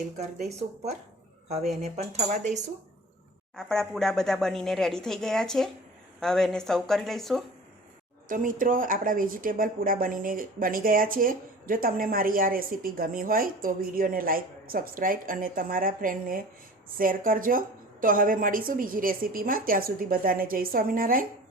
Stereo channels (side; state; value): both; normal; correlation 0.41